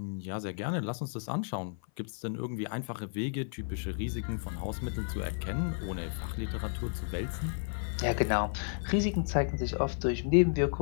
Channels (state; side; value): silent; right; 55 dB below the other